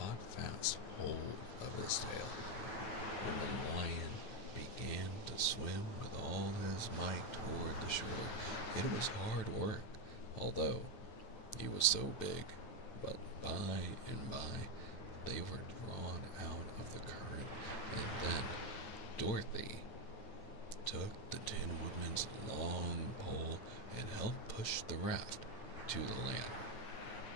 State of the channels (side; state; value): right; late; 9.0 ms